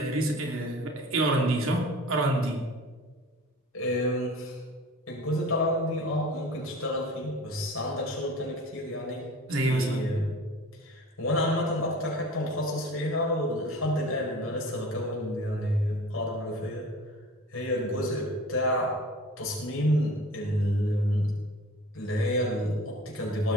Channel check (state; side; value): normal; both; correlation 0.41